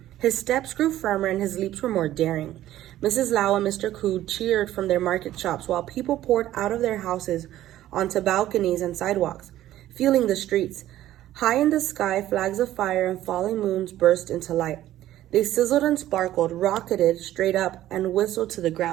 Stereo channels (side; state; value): left; quieter; 13.6 dB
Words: His steps grew firmer, and his leaps were more daring. Mrs. Lau and Mr. Ku cheered from their market shops, while people poured out of their houses onto balconies and sidewalks, filling the streets. High in the sky, flags of fire and falling moons burst into light. They sizzled and sparkled, rocketed straight up, and whistled to the